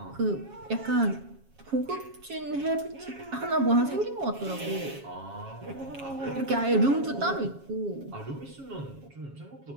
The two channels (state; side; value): late; left; 7.3 ms